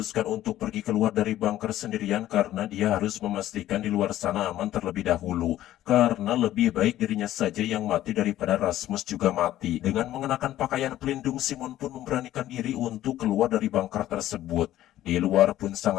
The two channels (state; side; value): quieter; right; 13.6 dB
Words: untuk pergi keluar dari bunker sendirian karena dia harus memastikan di luar sana aman terlebih dahulu. Karena lebih baik dirinya saja yang mati daripada Rasmus juga mati. Dengan mengenakan pakaian pelindung, Simon pun memberanikan diri untuk keluar dari bunker tersebut. Di luar pun